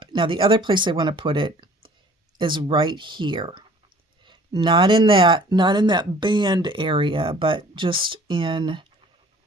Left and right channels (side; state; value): both; normal; correlation 0.52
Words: Now the other place I want to put it is right here. Not in that band area, but just in